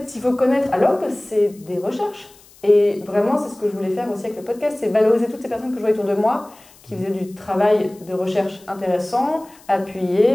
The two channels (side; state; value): left; noise; hiss, 26 dB below the sound